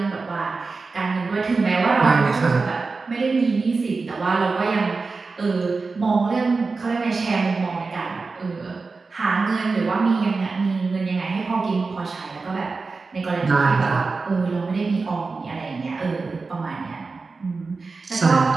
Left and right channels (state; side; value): quieter; left; 4.2 dB